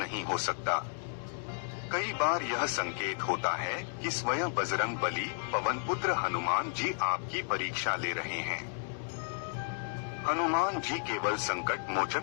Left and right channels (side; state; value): right; silent; digital silence